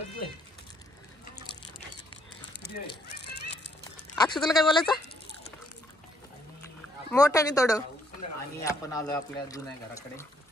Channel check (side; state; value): both; normal; correlation 0.70